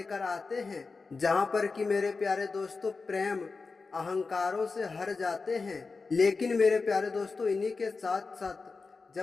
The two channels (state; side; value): quieter; right; 4.3 dB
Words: आते हैं जहां पर कि मेरे प्यारे दोस्तों प्रेम अहंकारों से हर जाते हैं। लेकिन मेरे प्यारे दोस्तों इन्हीं के साथ साथ